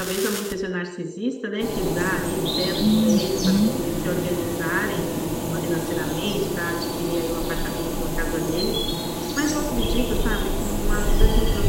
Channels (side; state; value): both; identical; correlation 1.00